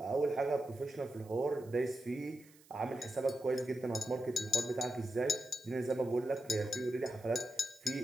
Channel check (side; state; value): right; noise; hiss, 26 dB below the sound